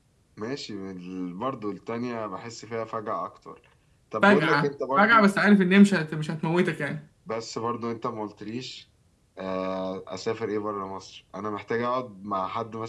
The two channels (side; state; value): both; identical; correlation 1.00